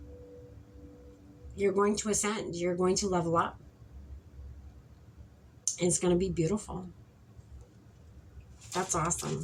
You're going to ascend. You're going to level up. And it's going to be beautiful. That's awesome.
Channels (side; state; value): both; identical; correlation 1.00